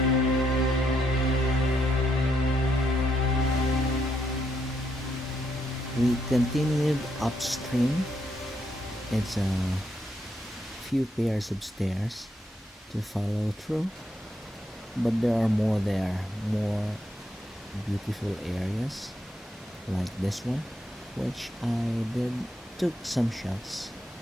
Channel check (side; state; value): both; normal; correlation 0.77